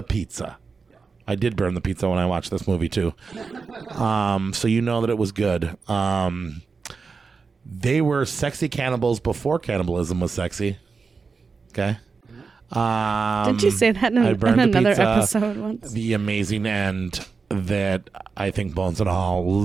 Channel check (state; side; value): quieter; left; 4.8 dB